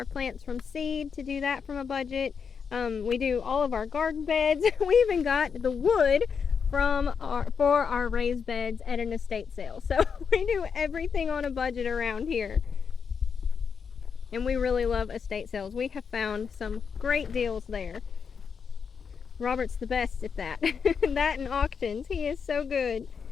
plants from seed to do that from a budget. We do all of our garden beds. We even got the wood for our raised beds at an estate sale. So we do everything on a budget around here. And we really love estate sales. We have found some great deals there. Robert's the best at that. That and auctions. He is so good.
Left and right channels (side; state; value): right; quieter; 6.3 dB